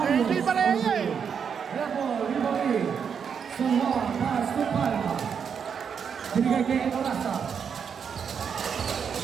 Pareja eh. Ramo, Riboni. Semua pass to Palma. Binigay kay Enorasa.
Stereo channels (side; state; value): left; quieter; 7.0 dB